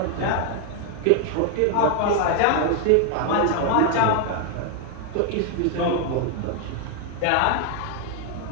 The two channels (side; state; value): both; different; correlation 0.01